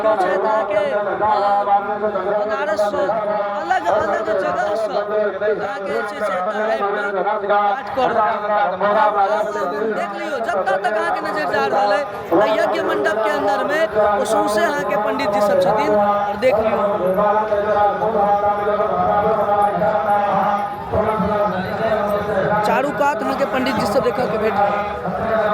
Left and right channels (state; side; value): identical; both; correlation 1.00